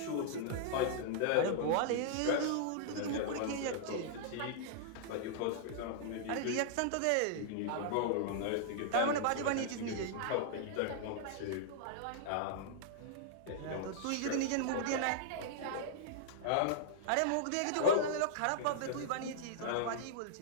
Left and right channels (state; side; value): different; both; correlation -0.01